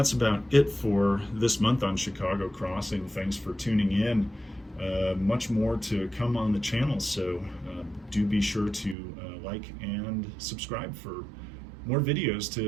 about it for this month on Chicago Crossing. Thanks for tuning in. Much more to come on the channel, so do be sure to like and subscribe for more videos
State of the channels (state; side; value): drops out; left; at 9.0 s